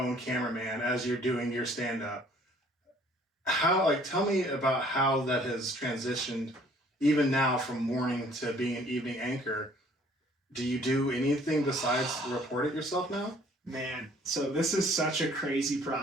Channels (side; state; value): both; normal; correlation 0.57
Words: cameraman as you're doing your stand-up. Tell me about how that has transitioned, even now from morning to being an evening anchor. Do you do anything besides report it yourself now? Man, so this is such a crazy